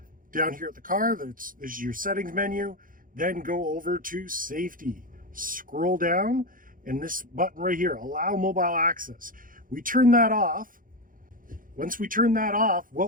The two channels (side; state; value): left; late; 0.40 ms